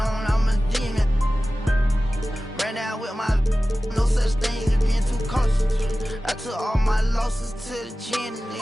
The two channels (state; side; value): normal; both; correlation 0.96